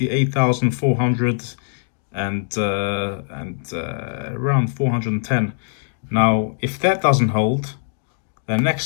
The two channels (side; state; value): right; silent; digital silence